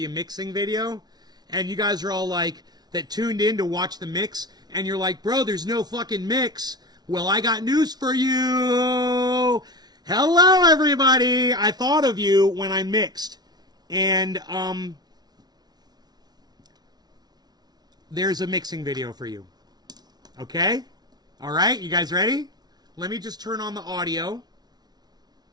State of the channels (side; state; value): left; late; 0.19 ms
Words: a mixing video, and you guys are all like, that tuned in to watch the mix, and you're like, bro, there's no fucking mix. Well, I got news for you. Hello, everybody. I thought of you when I mixed, and there's a mixing video for you. Okay? All right, you guys ready? Let me just turn on the audio,